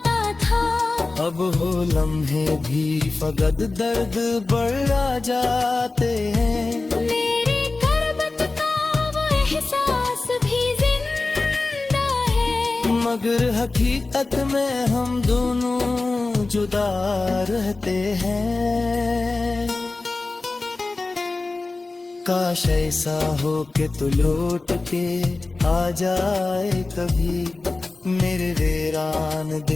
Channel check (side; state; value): right; quieter; 3.5 dB